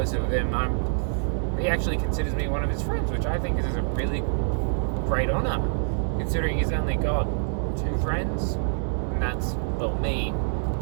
with him. He actually considers me one of his friends, which I think is a really great honour, considering he's only got 2 friends, and that's, well, me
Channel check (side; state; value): left; silent; digital silence